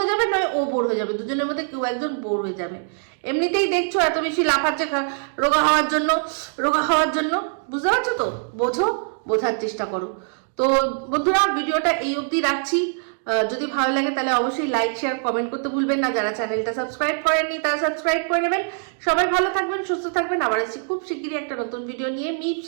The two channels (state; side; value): silent; left; 62 dB below the other